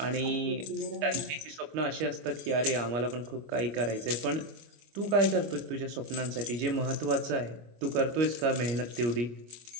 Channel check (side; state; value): left; late; 25 ms